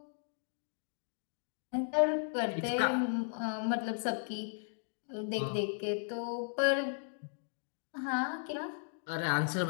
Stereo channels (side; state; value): right; silent; digital silence